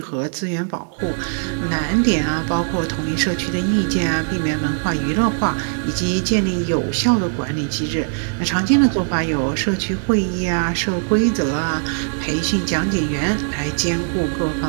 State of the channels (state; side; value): silent; left; digital silence